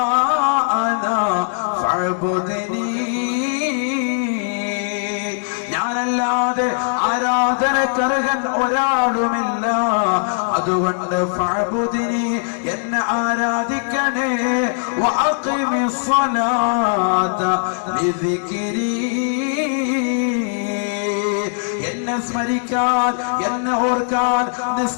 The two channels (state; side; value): silent; right; digital silence